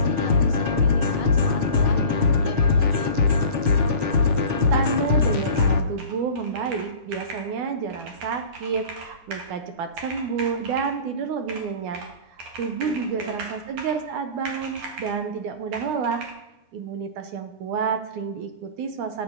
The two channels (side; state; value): left; late; 9.7 ms